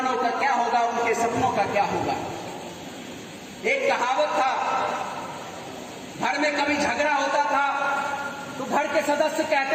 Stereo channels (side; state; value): both; identical; correlation 1.00